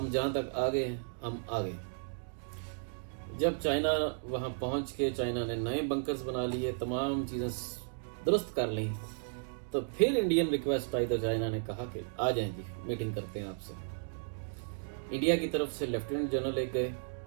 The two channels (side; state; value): left; silent; digital silence